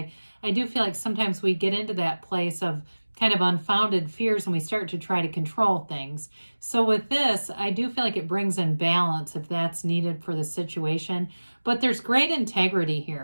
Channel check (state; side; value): inverted; both; correlation -1.00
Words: do feel like sometimes we get into that place of kind of unfounded fears and we start to try to control things. So with this, I do feel like it brings in balance if that's needed for the situation, but there's great integrity